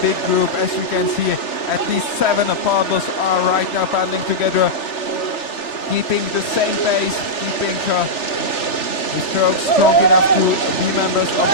group, as you can see. At least 7 paddlers are right now paddling together, keeping the same pace, keeping the strokes strong enough to be members of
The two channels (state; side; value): late; right; 3.1 ms